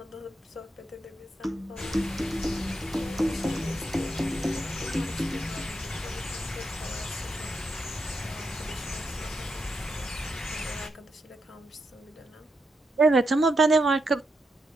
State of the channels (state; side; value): normal; both; correlation 0.83